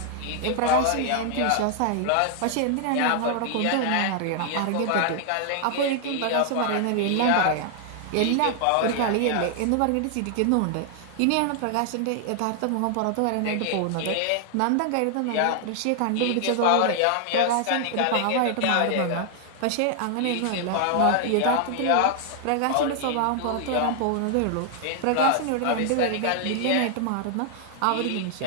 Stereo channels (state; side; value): different; both; correlation 0.00